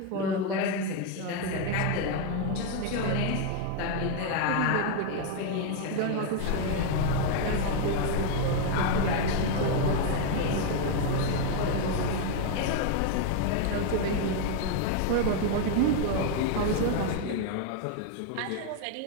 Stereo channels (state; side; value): different; both; correlation 0.01